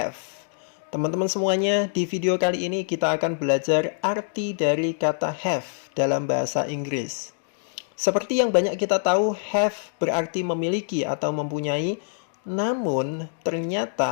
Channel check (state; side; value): silent; right; digital silence